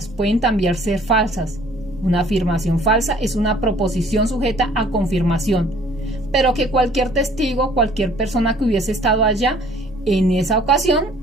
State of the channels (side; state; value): both; normal; correlation 0.56